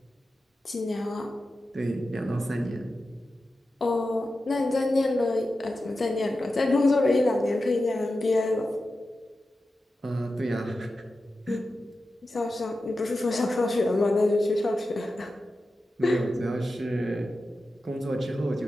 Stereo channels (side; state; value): both; normal; correlation 0.92